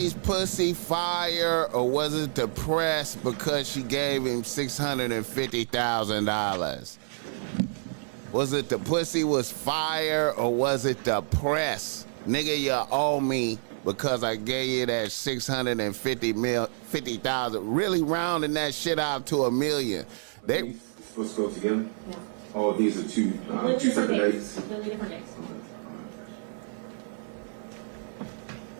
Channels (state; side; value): silent; left; 58 dB below the other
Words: pussy fire or was it the press because she gave him $650,000? Was it the pussy was fire or was it the press? Nigga, you owe me because I gave you that 50,000. Really rounding that shit out to $1 million. Are They, these supposed to go together? Oh, these are two separate dates? Completely different dates. Okay, all right.